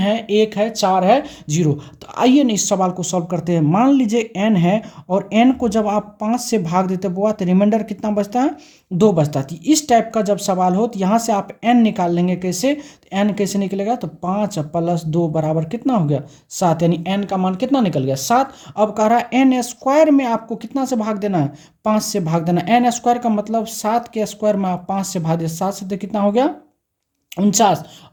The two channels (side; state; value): both; identical; correlation 1.00